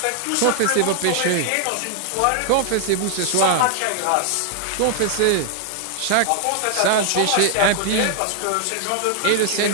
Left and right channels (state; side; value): different; both; correlation 0.00